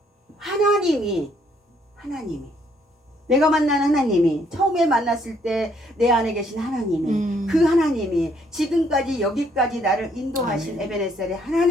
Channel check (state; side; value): normal; both; correlation 0.68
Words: 하나님이 내가 만난 하나님이 처음에 만났을 때 내 안에 계신 하나님이 그 하나님이 지금까지 여기까지 나를 인도하신 에베네셀의